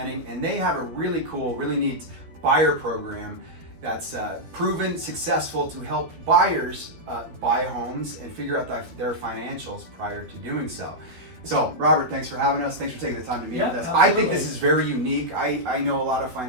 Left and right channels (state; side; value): late; left; 12 ms